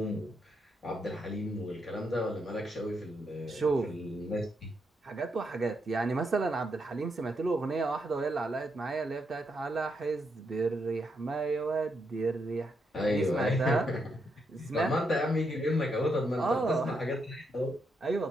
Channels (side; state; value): both; normal; correlation 0.79